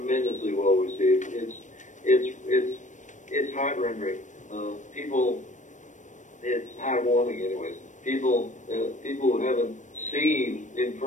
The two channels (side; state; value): right; late; 0.36 ms